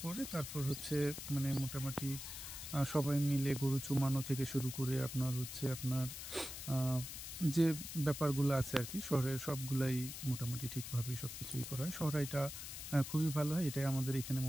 পরে তারপর হচ্ছে মানে মোটামুটি সবাই মিলে গরু চুমানো থেকে শুরু করে আপনার হচ্ছে আপনার যে ব্যাপারগুলো আছে আর কি শহরের সবগুলাই মোটামুটি ঠিকভাবেই সব কিছুই করা হয়। শহরাইটা খুবই ভালো হয়, এটাই আমাদের এখানে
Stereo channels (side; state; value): left; noise; hiss, 8 dB below the sound